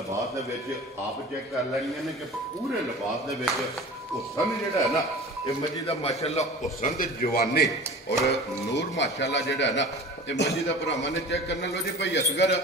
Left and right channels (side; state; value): both; normal; correlation 0.38